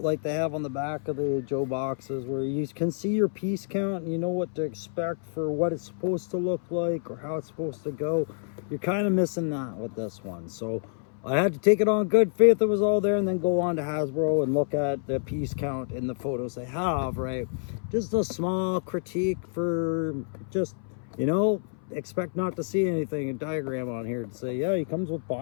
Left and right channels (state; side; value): silent; right; 59 dB below the other